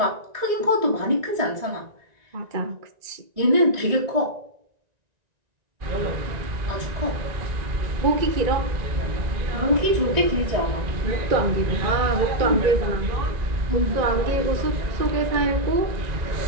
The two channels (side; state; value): left; late; 1.9 ms